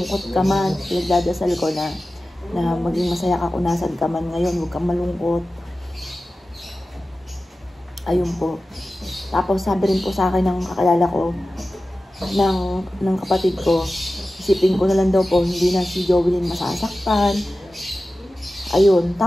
ka man, nagdadasal ko na maging masaya ka kung nasan ka man ngayon, huwag kang malungkot. Ayun po. Tapos sabi rin po sa akin ng kakalala ko, ng kapatid ko, isipin ko na lang daw po, hindi na si Joelyn masasaktan. Ayun.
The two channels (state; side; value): normal; both; correlation 0.95